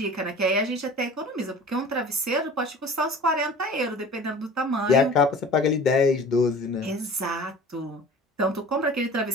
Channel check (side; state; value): both; normal; correlation 0.42